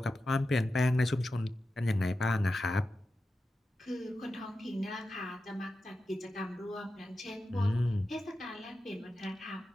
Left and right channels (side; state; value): both; normal; correlation 0.91